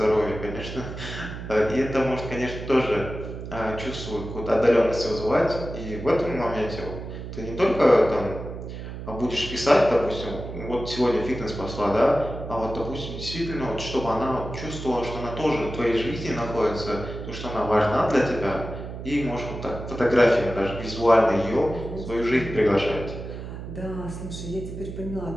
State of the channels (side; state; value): right; noise; hum, 9 dB below the sound